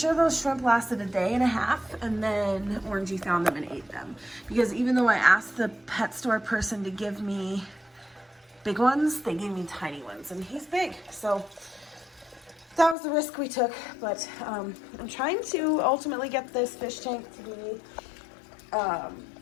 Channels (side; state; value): right; drops out; at 13.0 s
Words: those shrimp lasted a day and a half, and then Orangey found them and ate them. Because even though I asked the pet store person to give me big ones, they gave me tiny ones, and he's big. So that was the risk we took. But I'm trying to ultimately get this fish tank to be, I